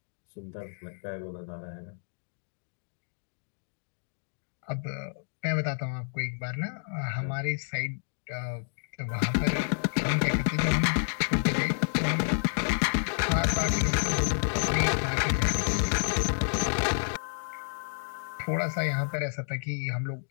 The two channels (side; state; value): right; silent; 58 dB below the other